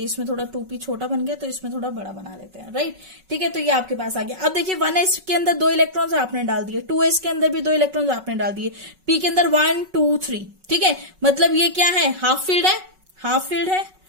इसमें थोड़ा 2p छोटा बन गया तो इसमें थोड़ा बड़ा बना लेते हैं, राइट, ठीक है। तो ये आपके पास आ गया। अब देखिए 1s के अंदर 2 इलेक्ट्रॉन्स आपने डाल दिए, 2s के अंदर भी 2 इलेक्ट्रॉन्स आपने डाल दिए, p के अंदर 1 2 3, ठीक है, मतलब ये क्या है, हाफ फील्ड है, हाफ फील्ड है,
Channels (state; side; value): late; left; 5.4 ms